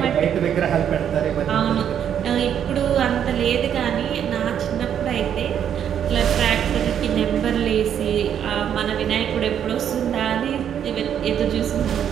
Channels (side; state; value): left; quieter; 9.1 dB